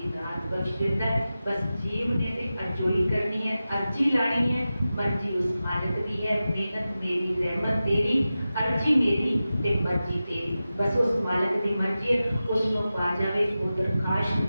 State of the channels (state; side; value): inverted; both; correlation -0.94